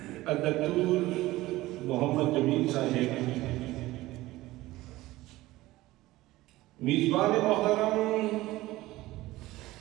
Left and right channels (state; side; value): quieter; left; 17.8 dB